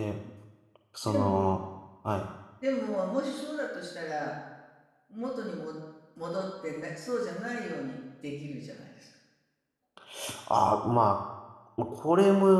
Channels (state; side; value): identical; both; correlation 1.00